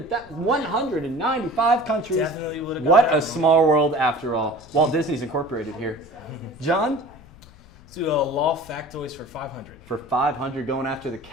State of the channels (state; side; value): noise; left; rumble, 23 dB below the sound